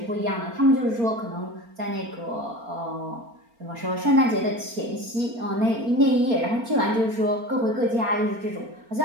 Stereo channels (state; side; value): late; left; 4.4 ms